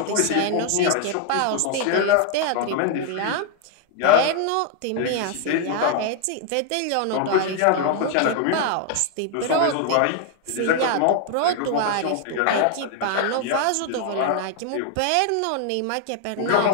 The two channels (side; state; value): both; different; correlation 0.00